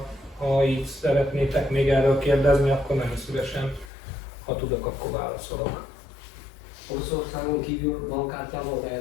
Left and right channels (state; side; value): drops out; right; at 3.9 s